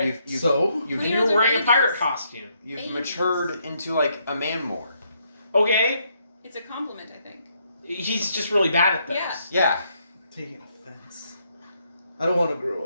You've So. you've, And You're you were the wearing a pirate babies. costume. you've Babies. matured into a man more. Okay. It's a compliment, I think. He's just really bad at this. Yeah. Yeah. Taking offense. I don't want to grow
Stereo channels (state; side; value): inverted; both; correlation -0.74